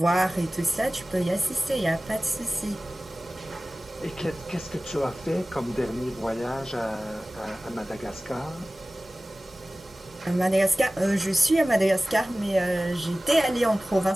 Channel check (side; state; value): both; normal; correlation 0.97